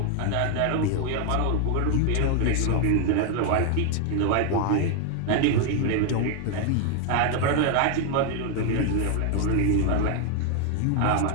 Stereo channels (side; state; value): both; different; correlation 0.00